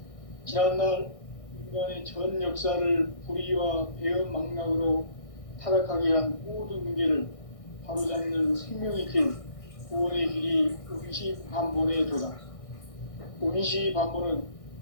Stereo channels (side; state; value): right; late; 1.6 ms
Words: 지난날 인간의 전 역사를 불의와 배움 망락으로 타락하게 한 모든 문제를 바로잡는 생명의 길, 구원의 길이 운시반본의 도다. 운시반본은